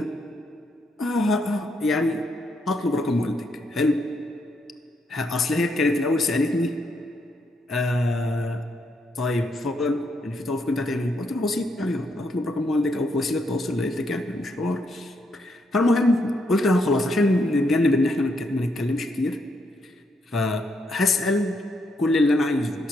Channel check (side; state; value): both; normal; correlation 0.77